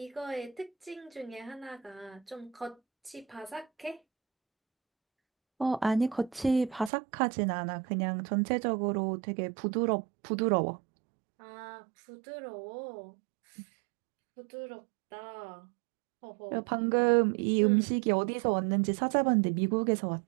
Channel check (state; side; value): drops out; left; at 6.9 s